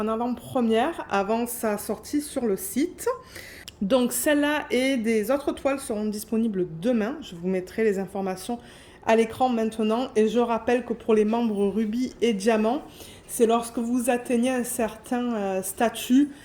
en avant-première avant sa sortie sur le site. Donc celle-là et des autres toiles seront disponibles demain. Je vous mettrai les informations à l'écran maintenant. Et je rappelle que pour les membres rubis et diamants, c'est lorsque vous atteignez un certain statut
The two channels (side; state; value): both; identical; correlation 1.00